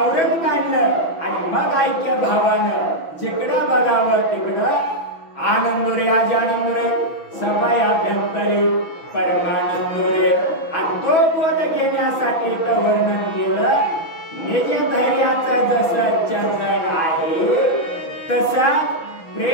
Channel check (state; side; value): late; right; 6.1 ms